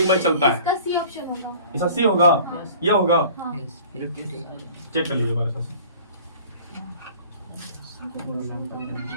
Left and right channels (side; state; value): both; inverted; correlation -0.46